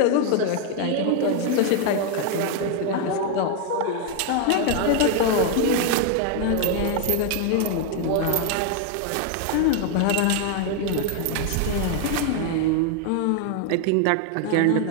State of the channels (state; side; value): different; both; correlation 0.01